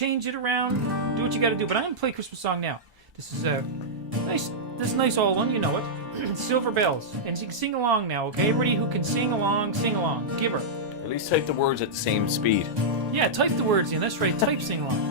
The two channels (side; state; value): both; normal; correlation -0.10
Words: it around, do what you got to do. But I'm gonna play a Christmas song now. This is a nice old one, you know it. Silver Bells, and you can sing along now, okay? Everybody who can sing along, give her. At least type the words at the same speed. Yeah, type the words in. That's right. Type sing